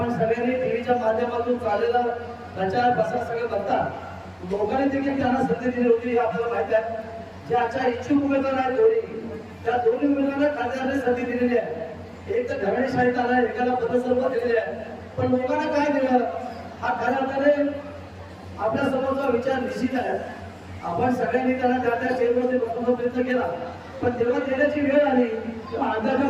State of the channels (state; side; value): identical; both; correlation 1.00